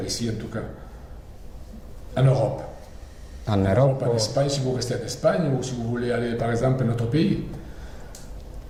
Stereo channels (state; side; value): identical; both; correlation 1.00